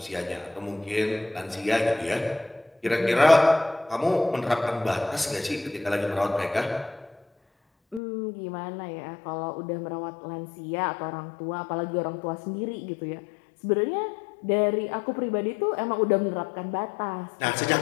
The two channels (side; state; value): right; drops out; at 8.0 s